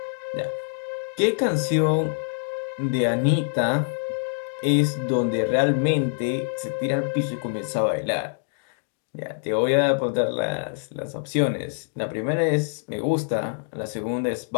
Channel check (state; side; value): silent; right; digital silence